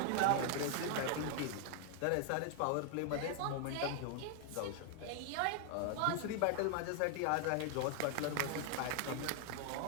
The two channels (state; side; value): different; both; correlation 0.00